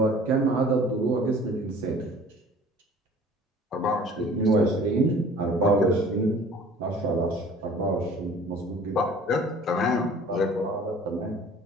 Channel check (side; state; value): both; normal; correlation 0.49